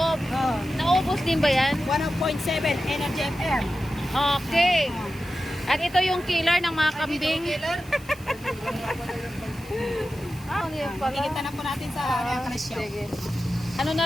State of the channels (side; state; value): left; noise; hiss, 23 dB below the sound